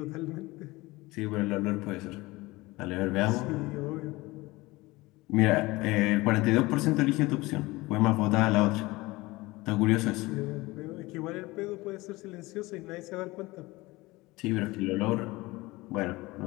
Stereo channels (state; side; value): quieter; right; 21.1 dB